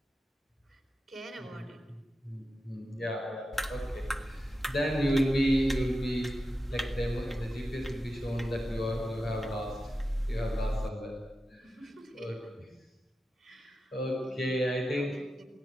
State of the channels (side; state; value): both; normal; correlation 0.91